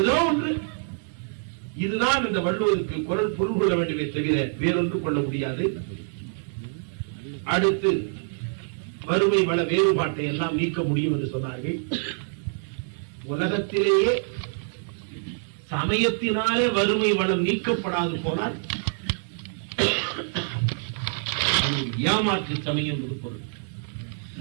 ஒன்று. இதுதான் இந்த வள்ளுவருக்கு குரல் பொருள் கொள்ள வேண்டுமே தவிர வேறொன்று கொள்ள முடியாது. அடுத்து வறுமை வள வேறுபாட்டை எல்லாம் நீக்க முடியும் என்று சொன்னார்கள். உலகத்திலேயே சமயத்தினாலே வறுமை வளம் நீக்கப்படாது போனால் ஏமாற்று சமயம் என்று பொருள்.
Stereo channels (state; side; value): silent; left; digital silence